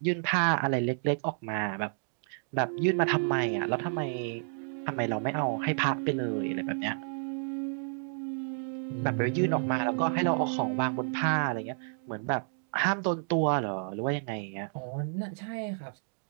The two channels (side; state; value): left; silent; digital silence